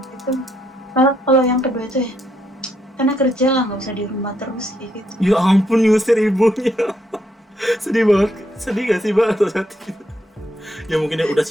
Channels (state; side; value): normal; both; correlation 0.75